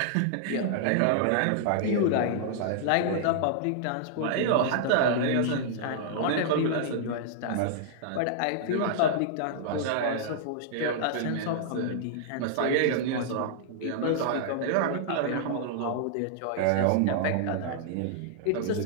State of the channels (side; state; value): both; different; correlation -0.01